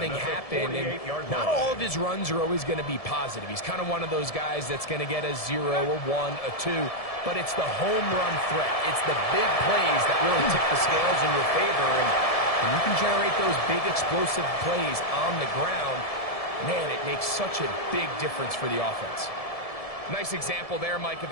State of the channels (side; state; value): right; late; 1.7 ms